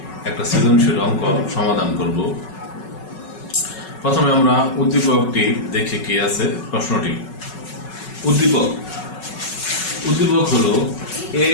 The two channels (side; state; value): right; late; 5.4 ms